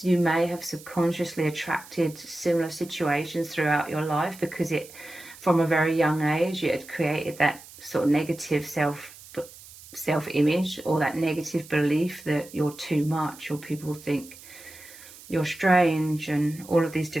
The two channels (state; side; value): noise; right; hiss, 19 dB below the sound